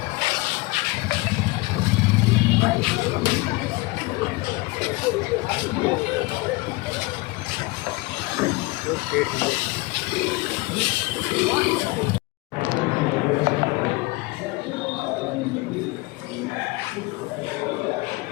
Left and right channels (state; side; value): quieter; right; 22.9 dB